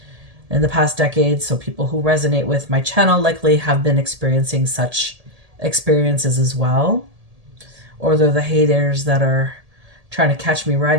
in the past decades. So people who resonate with my channel likely have been experiencing such experiences as well. Or they're the haters that are trying to catch me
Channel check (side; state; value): left; late; 1.7 ms